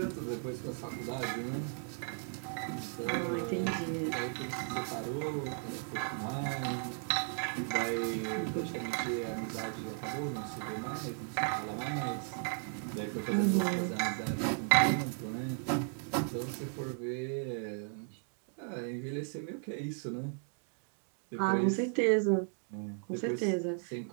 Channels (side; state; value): left; silent; 54 dB below the other